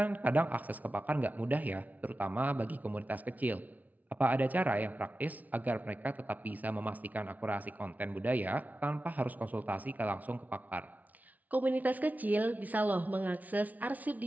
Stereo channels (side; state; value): left; late; 0.075 ms